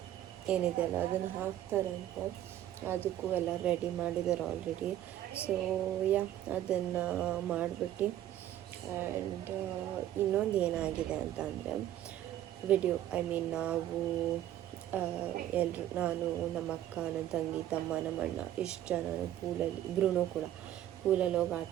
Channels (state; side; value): quieter; left; 12.4 dB